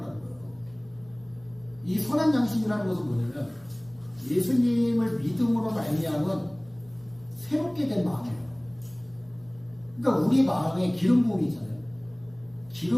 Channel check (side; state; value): right; noise; hum, 28 dB below the sound